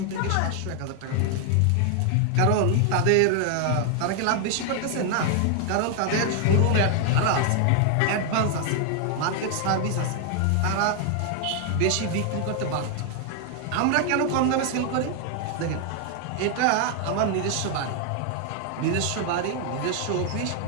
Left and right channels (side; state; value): both; different; correlation 0.00